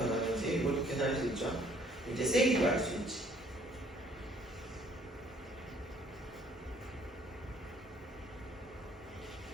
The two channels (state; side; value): normal; both; correlation 0.61